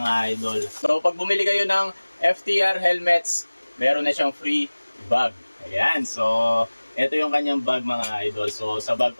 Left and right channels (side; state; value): both; inverted; correlation -1.00